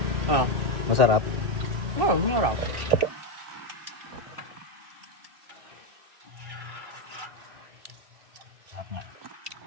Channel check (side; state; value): left; late; 3.0 ms